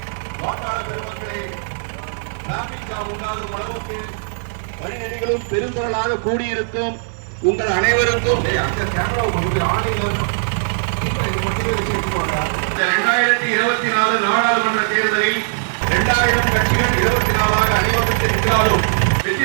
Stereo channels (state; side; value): silent; left; 66 dB below the other